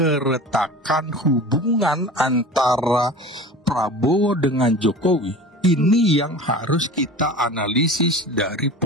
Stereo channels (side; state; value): both; normal; correlation 0.36